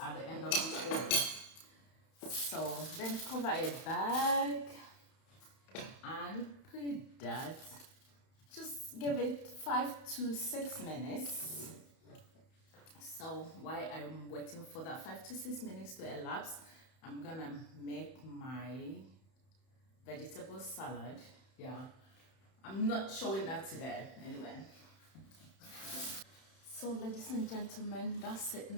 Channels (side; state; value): right; late; 31 ms